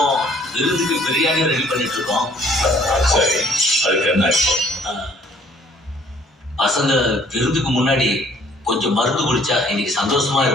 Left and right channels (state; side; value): normal; both; correlation 0.59